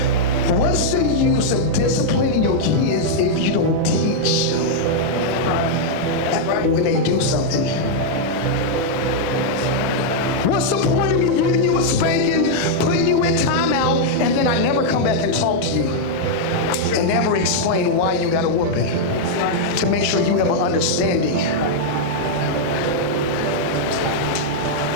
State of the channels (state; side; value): late; right; 6.7 ms